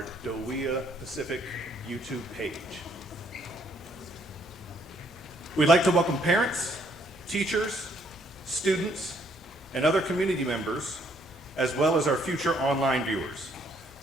DoWEA Pacific YouTube page. We'd like to welcome parents, teachers, students, and other community members, as well as our future online viewers.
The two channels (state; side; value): normal; both; correlation 0.68